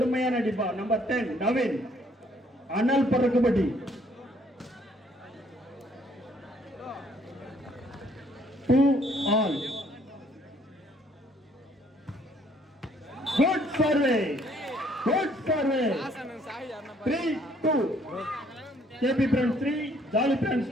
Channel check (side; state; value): both; normal; correlation 0.64